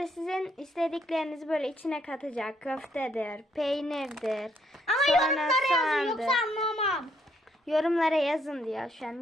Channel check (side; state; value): both; normal; correlation 0.71